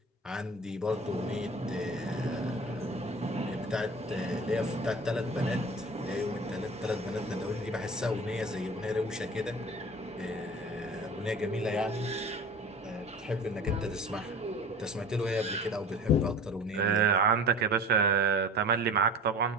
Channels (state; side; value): normal; both; correlation 0.39